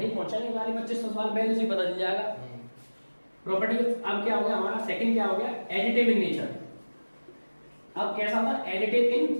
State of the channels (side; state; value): both; inverted; correlation -1.00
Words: पहुंचेंगे वाले 2500 साल पहले से पता चल जाएगा। प्रॉपर्टी अब क्या हो गया हमारा, सेकंड क्या हो गया, एडिटिव इन नेचर। अब कैसा था? Additive in